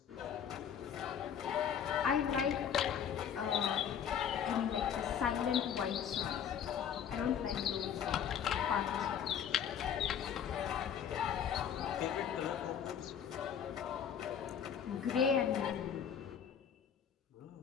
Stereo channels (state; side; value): quieter; right; 8.4 dB